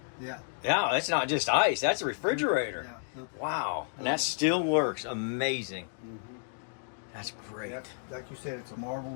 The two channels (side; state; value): right; silent; digital silence